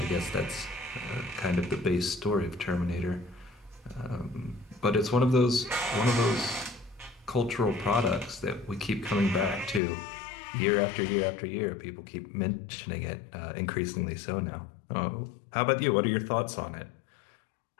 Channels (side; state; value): right; drops out; at 9.8 s